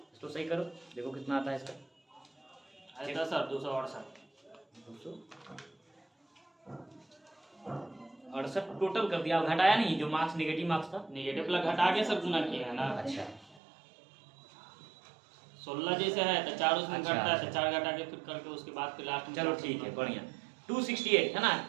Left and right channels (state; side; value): drops out; left; at 13.6 s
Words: इसको सही करो, देखो कितना आता है इसका। आता सर 268 268 टोटल कर दिया, घटाया नहीं। जो मार्क्स नेगेटिव मार्क्स था, नेगेटिव प्लस घटा के सब गुना किए हैं ना। अच्छा 16 जैसे है तो 4 उसमें अच्छा, घटता है तो 4 घटा के फिर करके उसके बाद फिर लास्ट में। चलो ठीक है, बढ़िया। 268 है ना,